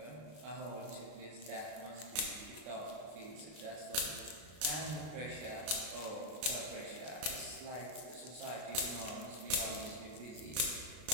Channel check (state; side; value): late; left; 33 ms